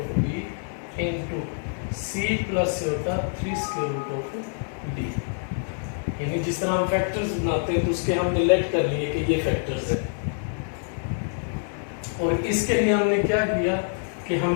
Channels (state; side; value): silent; right; 61 dB below the other